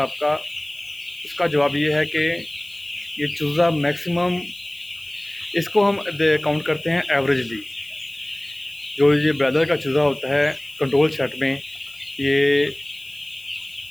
उसका जवाब ये है कि ये चूज़ा मैक्सिमम, इसको हम काउंट करते हैं एवरेजली। जो ये ब्रॉयलर का चूज़ा होता है कंट्रोल सेट में, ये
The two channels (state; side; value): noise; left; hiss, 23 dB below the sound